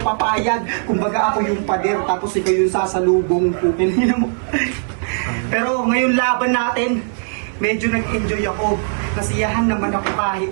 Kumbaga ako yung pader, tapos ikaw yung sasalubong. Tangina mo. Pero ngayon laban natin, medyo nag-enjoy ako. Nasiyahan naman ako kahit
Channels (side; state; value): left; silent; digital silence